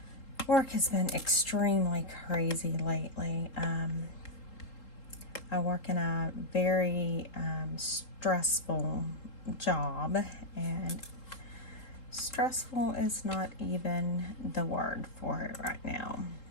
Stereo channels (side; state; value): right; late; 3.8 ms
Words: work has been extremely crazy lately. I work in a very stressful job, and stressful is not even the word for it right now.